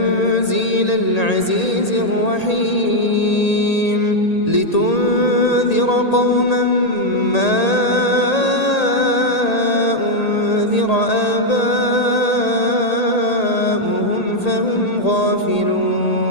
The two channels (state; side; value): late; right; 1.8 ms